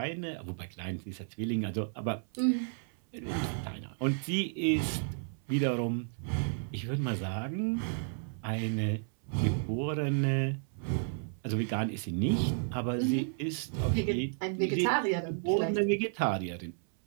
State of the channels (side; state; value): left; silent; 56 dB below the other